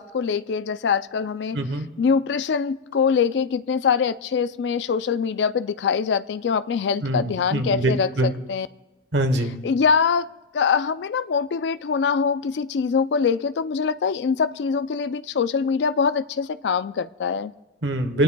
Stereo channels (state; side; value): quieter; right; 4.5 dB